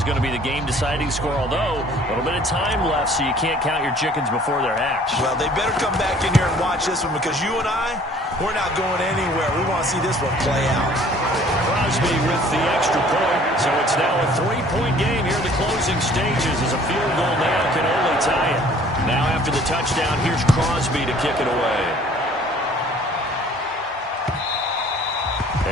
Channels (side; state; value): both; normal; correlation 0.54